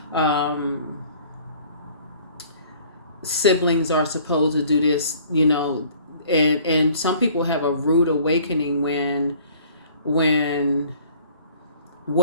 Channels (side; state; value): both; inverted; correlation -0.53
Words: Siblings are supposed to do this, you know, and some people have a rude awakening when